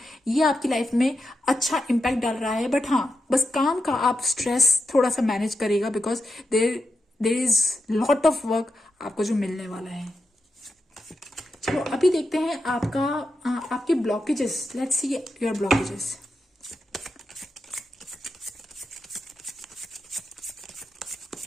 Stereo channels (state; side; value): normal; both; correlation 0.87